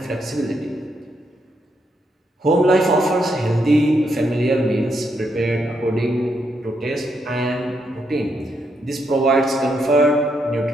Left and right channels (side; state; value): both; normal; correlation 0.78